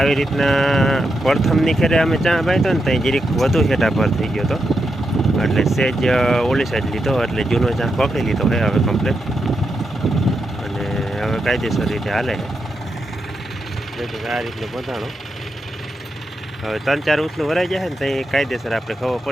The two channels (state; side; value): normal; both; correlation 0.85